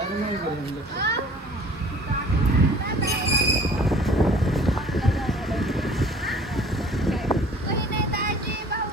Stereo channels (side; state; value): both; normal; correlation 0.50